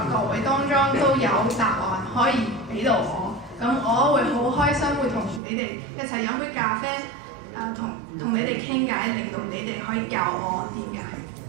各位當中都有答案可以俾到我，咁我會好開心，會同你哋一齊飲杯咖啡，同你哋傾偈，令到你哋可以教我點解。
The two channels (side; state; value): left; drops out; at 5.4 s